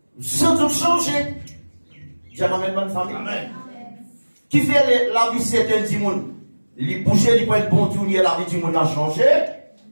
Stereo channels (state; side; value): inverted; both; correlation -1.00